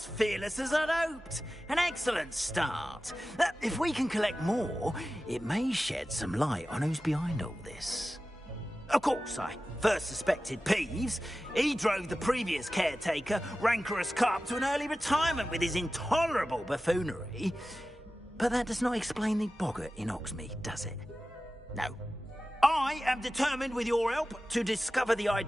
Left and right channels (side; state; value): both; normal; correlation 0.95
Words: fearless as I'd hoped. An excellent start. If we can collect more, it may shed some light on who's behind all this. Of course, I first suspected Peeves. He drove the previous caretaker, Rancorous Carp, to an early retirement with his intolerable buffoonery. But that does not explain the boggart in Oxmead, does it? No. I am determined, with your help, to discover the